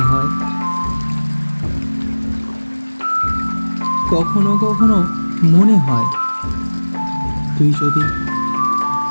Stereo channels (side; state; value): both; inverted; correlation -1.00